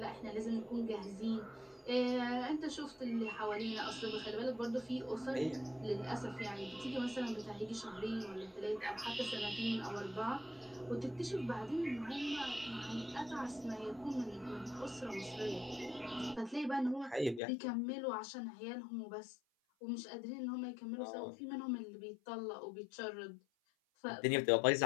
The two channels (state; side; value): drops out; right; at 17.4 s